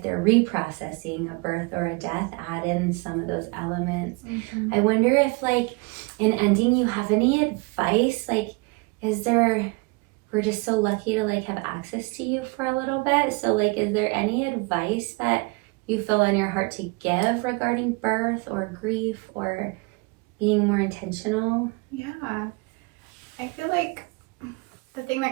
they're reprocessing a birth or a death, add in some of those elements. I wonder if, like, in ending, you have any advice? Like, we're just so lucky to like have access to you for a little bit. So like, is there any advice that you feel on your heart to give regarding birth or grief or being more intentional? Yeah, I feel like the thing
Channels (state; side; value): quieter; left; 28.5 dB